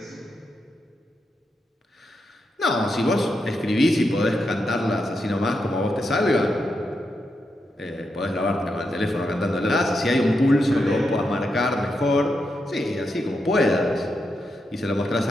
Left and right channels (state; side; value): normal; both; correlation 0.85